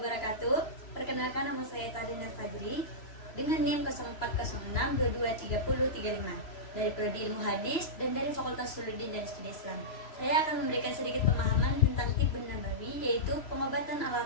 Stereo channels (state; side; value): late; right; 3.0 ms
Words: Perkenalkan, nama saya Tadina Fadri dengan NIM 0406223035 dari Prodi Ilmu Hadis dan dari Fakultas Suluddin dan Studi Islam. Saya akan memberikan sedikit pemahaman tentang Tibbun Nabawi, yaitu pengobatan ala